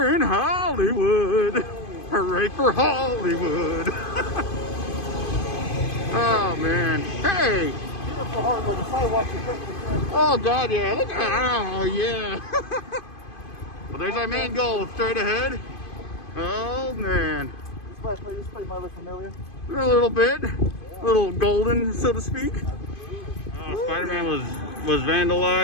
in Hollywood. Hooray for Hollywood. Oh, man. Hey. Oh, God, yeah. Look at, oh, yeah. Well, there's our main goal, straight ahead. Oh, man. This place might look familiar. A little bit. A little golden, so to speak. Oh, Spider-Man was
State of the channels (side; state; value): right; late; 2.5 ms